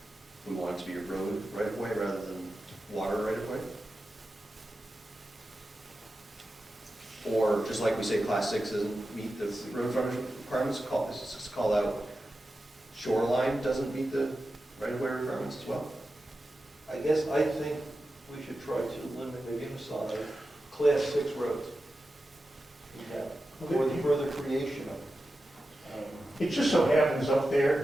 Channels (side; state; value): both; normal; correlation 0.92